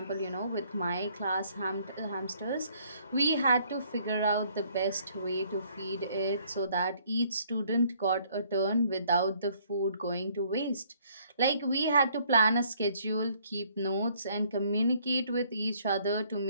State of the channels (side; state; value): both; inverted; correlation -0.64